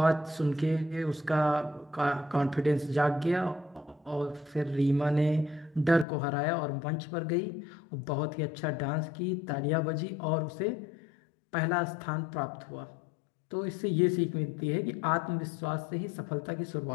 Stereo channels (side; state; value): right; drops out; at 6.1 s